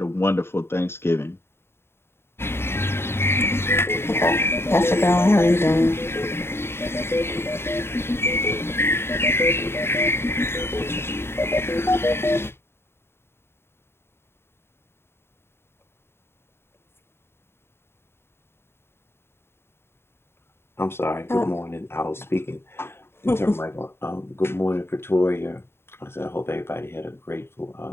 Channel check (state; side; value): late; right; 0.12 ms